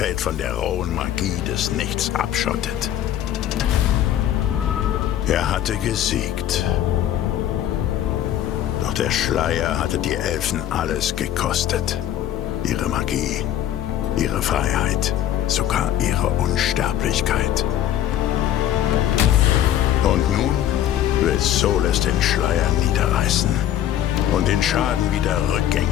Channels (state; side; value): quieter; right; 11.6 dB